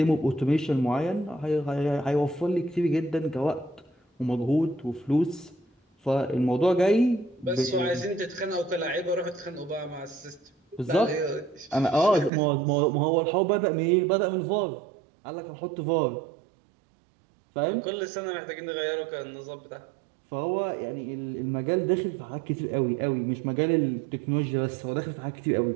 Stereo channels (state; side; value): drops out; left; at 12.3 s